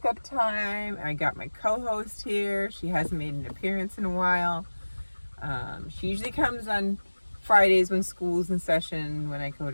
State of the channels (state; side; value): inverted; both; correlation -1.00